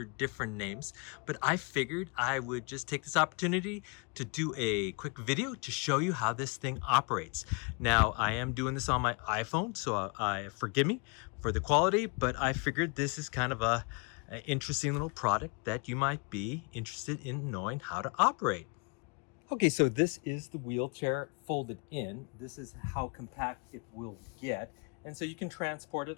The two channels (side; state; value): right; quieter; 33.7 dB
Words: different names. But I figured I would just take this opportunity to do a quick video to show you how this thing operates. Now, I am doing this on my iPhone, so forgive me for the quality, but I figured this is kind of an interesting little product that you might be interested in knowing how to operate. Okay, so this is the wheelchair folded in. This is how compact it will get. And so you can transport